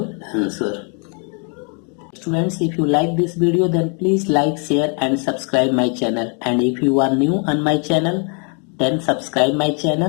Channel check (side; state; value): right; quieter; 38.7 dB